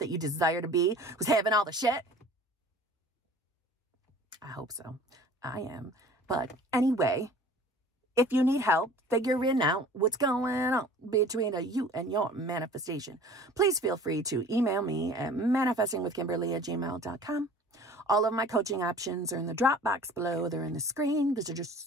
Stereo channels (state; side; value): normal; both; correlation 0.46